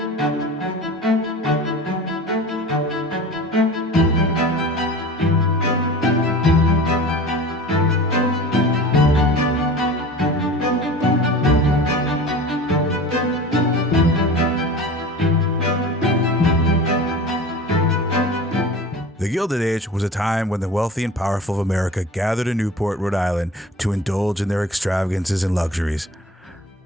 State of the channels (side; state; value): both; normal; correlation 0.37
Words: The Gilded Age was a time when the wealthy and powerful of America gathered in Newport, Rhode Island to indulge in their extravagances and luxuries.